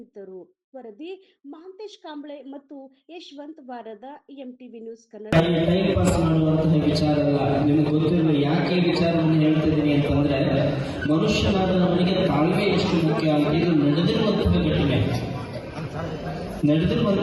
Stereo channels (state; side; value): identical; both; correlation 1.00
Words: ವರದಿ ಮಹಾಂತೇಶ್ ಕಾಂಬ್ಳೆ ಮತ್ತು ಯಶವಂತ್ ವಾರದ, MTV news Kannada. Time pass ಮಾಡುವಂತಹ ವಿಚಾರ ಅಲ್ಲ. ನಿಮ್ಗೆ ಗೊತ್ತಿರುವ ಯಾಕೆ ವಿಚಾರವನ್ನು ಹೇಳ್ತಿದ್ದೀನಿ ಅಂತಂದ್ರೆ, ಮನುಷ್ಯನಾದ ನಮಗೆ ತಾಳ್ಮೆ ಎಷ್ಟು ಮುಖ್ಯ. ಇದು ನಡೆದಿರುವಂತಹ ಘಟನೆ,